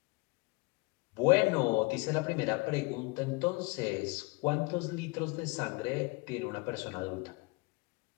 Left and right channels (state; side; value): quieter; right; 26.9 dB